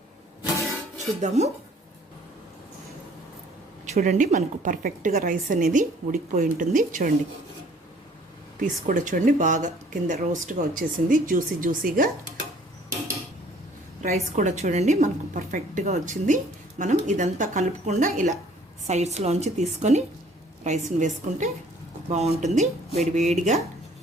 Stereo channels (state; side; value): normal; both; correlation 0.56